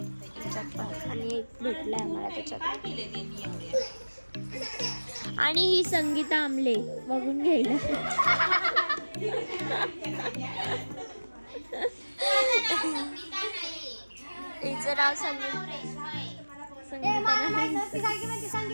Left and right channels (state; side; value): inverted; both; correlation -1.00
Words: त्याच्यात पण आणि एक भेटलाय मला त्याच्यात. आणि ही संगीता आमले बघून घ्यायला हिचं नाव संगीता